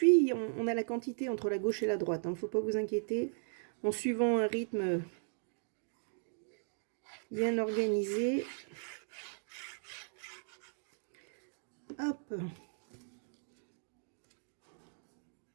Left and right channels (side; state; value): left; silent; digital silence